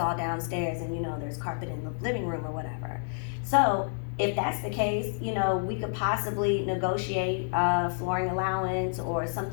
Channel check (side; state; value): right; silent; digital silence